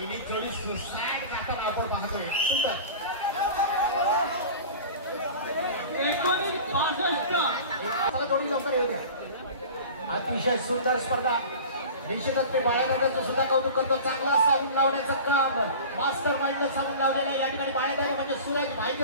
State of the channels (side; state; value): both; inverted; correlation -0.37